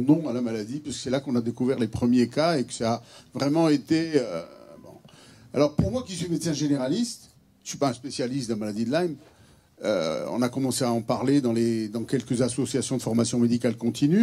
nom à la maladie, puisque c'est là qu'on a découvert les premiers cas et que ça a vraiment été... bon. Alors pour moi qui suis médecin généraliste, je ne suis pas un spécialiste de la maladie de Lyme, on a commencé à en parler dans quelques associations de formation médicale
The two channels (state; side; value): identical; both; correlation 1.00